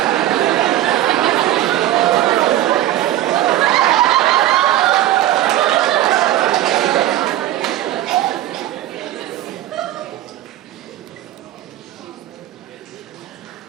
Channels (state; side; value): quieter; left; 13.8 dB